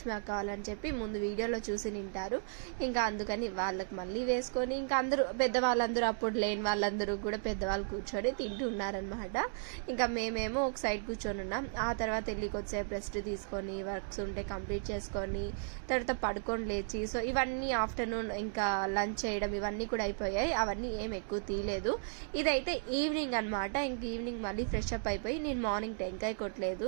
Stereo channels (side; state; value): left; silent; digital silence